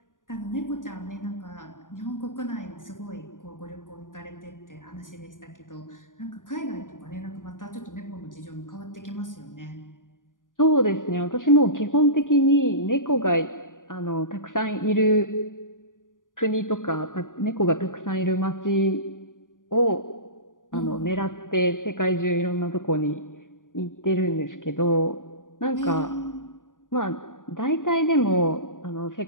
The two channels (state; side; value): late; right; 0.88 ms